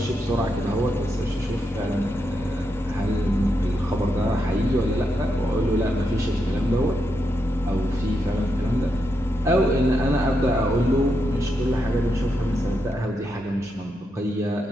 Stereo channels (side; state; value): both; normal; correlation 0.83